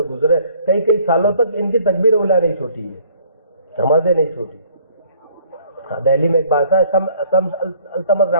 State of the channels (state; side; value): inverted; both; correlation -0.58